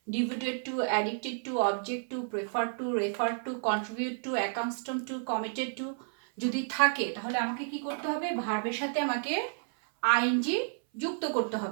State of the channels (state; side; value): silent; left; 57 dB below the other